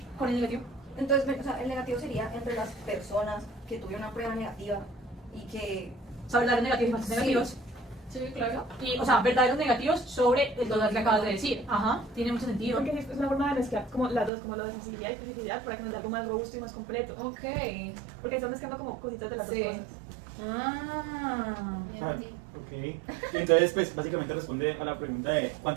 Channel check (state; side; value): drops out; left; at 14.3 s